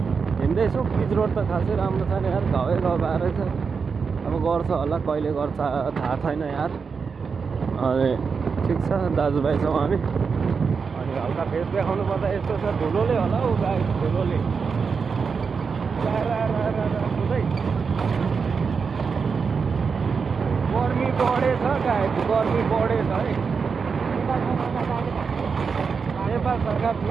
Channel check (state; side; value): quieter; left; 5.5 dB